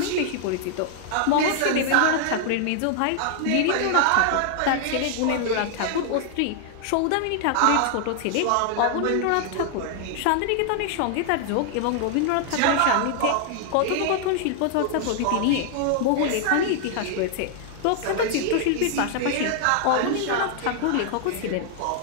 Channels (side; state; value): both; different; correlation 0.00